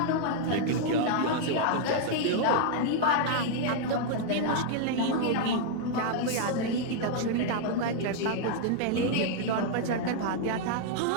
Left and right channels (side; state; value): both; different; correlation 0.00